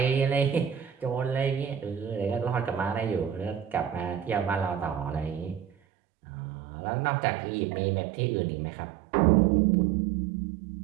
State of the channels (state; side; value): drops out; left; at 5.7 s